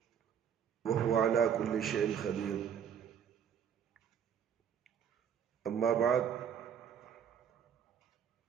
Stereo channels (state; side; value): quieter; left; 8.3 dB